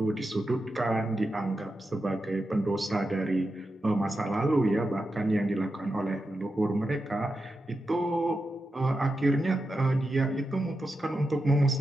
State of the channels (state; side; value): normal; both; correlation 0.89